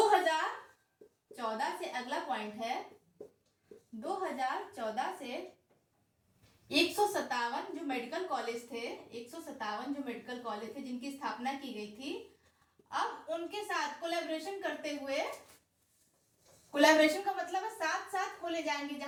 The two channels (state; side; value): identical; both; correlation 1.00